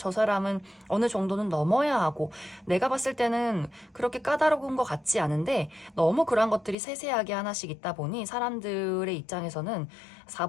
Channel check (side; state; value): right; drops out; at 6.8 s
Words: 사람은 어느 정도는 넘어야 하고 내가 봤을 때는 그렇게 까다로운 것 같지 않은데 너무 그런 것들이 세세하게 하나씩 있다 보니 사람들의 입장에서는